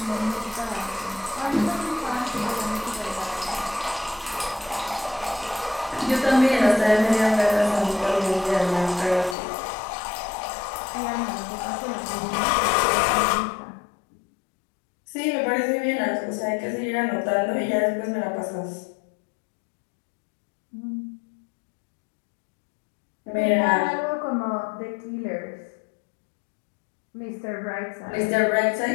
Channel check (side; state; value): right; drops out; at 9.3 s